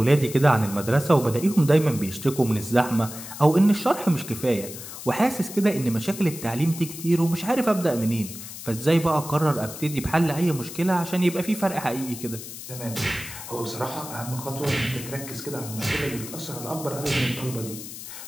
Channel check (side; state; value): left; noise; hiss, 11 dB below the sound